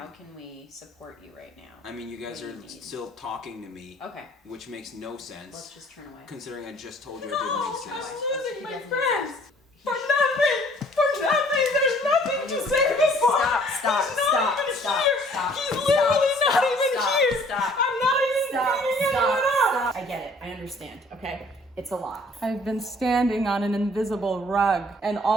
can we support you right now? I mean, you guys What are do you need? still talking to me, Okay, which makes no let's sense, just turn away. considering I just told you I didn't exist. losing my friends! For nothing! For nothing! There's nothing to say before! Stop! He's not even here! He's Stop, literally stop, not even stop, here! stop. I'm not even beating anyone up! I get it. I understand. Okay, it's a lot. I've been standing on an invisible rug, and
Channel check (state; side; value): normal; both; correlation 0.57